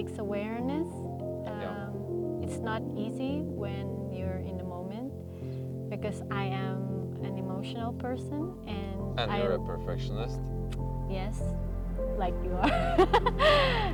awareness. It's not easy when you're in the moment, because I am an emotional person, and you're a perfectionist. Yes, like you are.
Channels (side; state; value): both; identical; correlation 1.00